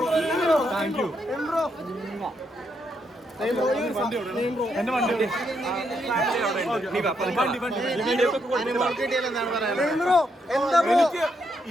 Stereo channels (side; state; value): both; normal; correlation 0.78